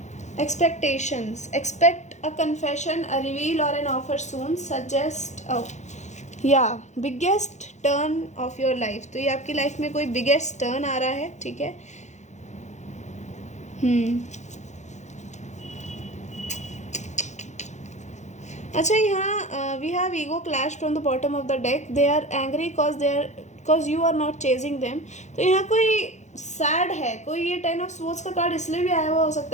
Expectations, expect a confession, a reveal or an offer soon. Suggest biggest turn of your life. तो ये आपकी life में कोई biggest turn आ रहा है, ठीक है। अच्छा, यहाँ we have ego clash from the bottom of the deck. They are angry cause you are not chasing them. तो यहाँ कोई सैड है, कोई ये 10 ऑफ स्वॉर्ड्स का कार्ड इसलिए भी आया हुआ हो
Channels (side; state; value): right; late; 0.34 ms